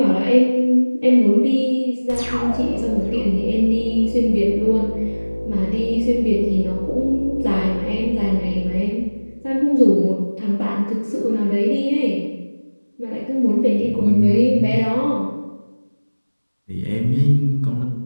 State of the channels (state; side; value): inverted; both; correlation -1.00